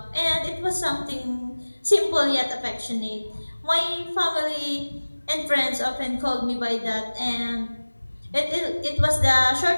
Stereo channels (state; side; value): inverted; both; correlation -1.00